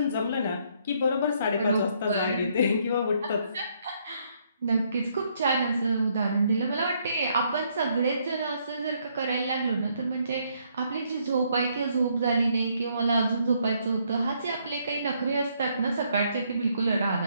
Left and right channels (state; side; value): inverted; both; correlation -0.71